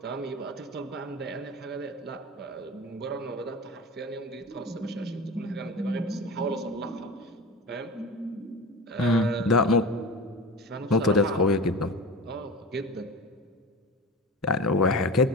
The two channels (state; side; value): normal; both; correlation 0.31